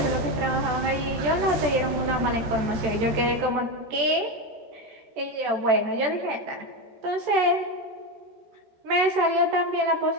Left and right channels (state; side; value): late; left; 14 ms